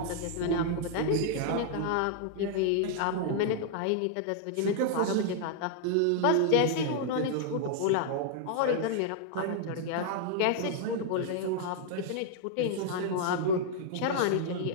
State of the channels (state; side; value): different; both; correlation -0.01